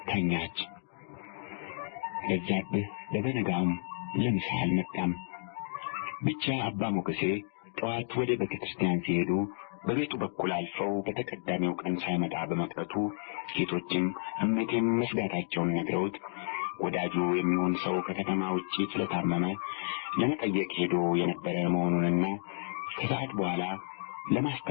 ተኛች። በዛብህ በበነጋውም ለምሳ አልመጣም። ብቻ አባ ሞገሴ ጠዋት ወደ ቤተ ክርስቲያን ሲሄዱ በቤቱ በኩል አልፈው በተቀዳሚው ቀን ሳይመጣ በመቅረቱ ሴቶችም እመቴም መስጋታቸውን ነግረውት ወዳጁ የሚሆን ሰው ከከተማ ውጪ ስለታመመ ለመጠየቅ ሄዶ የነበረ መሆኑንና ከሰዓት በኋላ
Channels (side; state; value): right; silent; digital silence